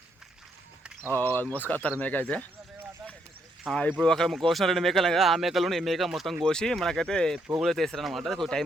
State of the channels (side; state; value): both; normal; correlation 0.75